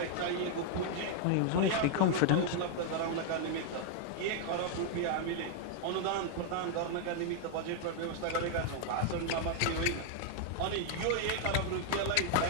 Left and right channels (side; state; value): both; different; correlation 0.00